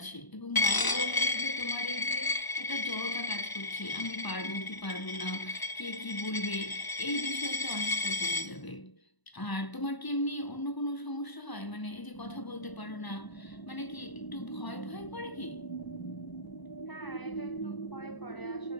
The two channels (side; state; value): right; late; 1.0 ms